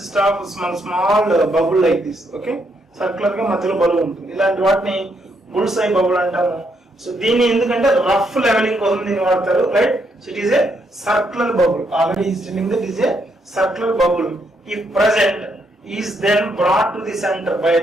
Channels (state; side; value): normal; both; correlation 0.76